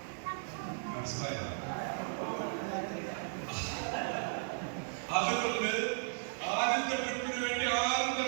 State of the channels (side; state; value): left; silent; digital silence